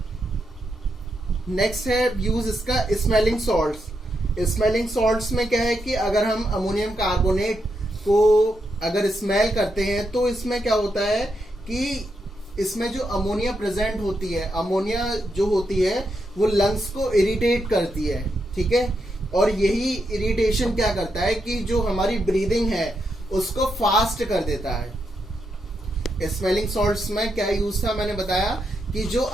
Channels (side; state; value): both; normal; correlation 0.82